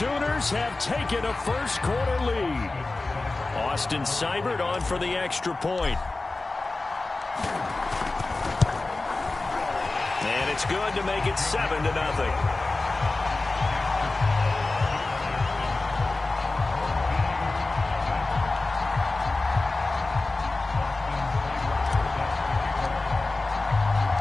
have taken a first-quarter lead. Austin Seibert on for the extra point. And it's good to make it 7-0.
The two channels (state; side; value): quieter; right; 3.3 dB